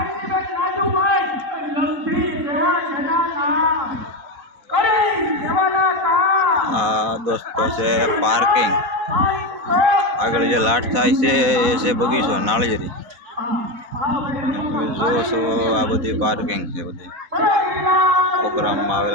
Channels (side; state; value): left; late; 4.1 ms